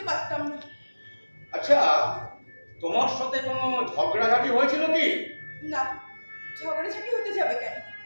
পারতাম না। আচ্ছা, তোমার সাথে কোনো ঝগড়াঝাটি হয়েছিল কি? না, ঝগড়াঝাটি হতে যাবে কেন?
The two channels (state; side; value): inverted; both; correlation -1.00